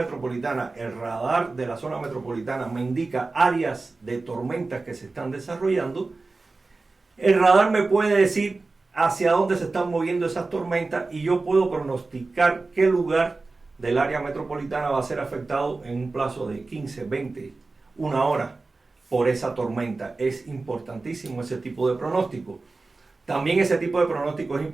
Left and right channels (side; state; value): left; quieter; 3.6 dB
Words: el radar de la zona metropolitana me indica áreas de tormentas que se están desarrollando, el radar me puede decir hacia dónde se están moviendo esas tormentas y yo puedo pronosticar qué lugar del área metropolitana va a ser afectado en un plazo de 15, 20, 1 hora por esa tormenta. Es importantísimo ese tipo de pronóstico. También ese tipo de pronóstico es